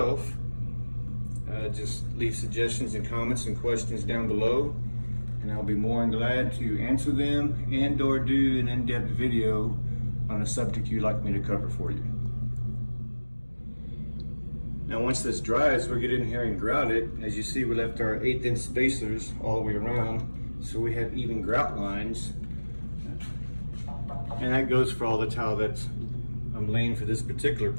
just leave suggestions and comments and questions down below, and I'll be more than glad to answer them and or do an in-depth video on a subject you'd like me to cover for you. Now once this dries, we'll get in here and grout it. As you see, we left our 1/8 inch spacers all the way around, so we have even grout lines. And that goes for all the tile that I'm laying for this particular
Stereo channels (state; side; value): inverted; both; correlation -1.00